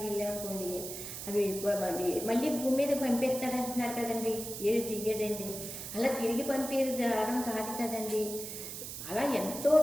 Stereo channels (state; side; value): noise; right; hiss, 8 dB below the sound